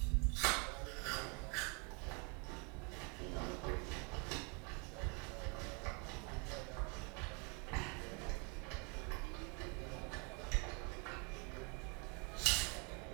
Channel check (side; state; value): left; quieter; 33.6 dB